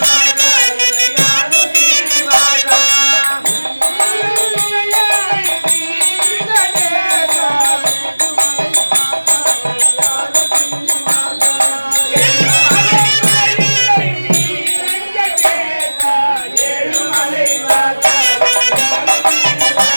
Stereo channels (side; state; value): both; inverted; correlation -1.00